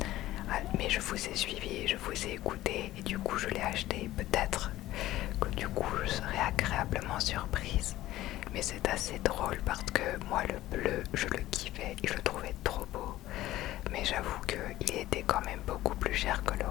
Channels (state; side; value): quieter; right; 15.5 dB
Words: Mais je vous ai suivi, je vous ai écouté et du coup je l'ai acheté. Peut-être que du coup je serai agréablement surprise. Mais c'est assez drôle parce que moi le bleu je le kiffais et je le trouvais trop beau. Mais j'avoue qu'il était quand même beaucoup plus cher que le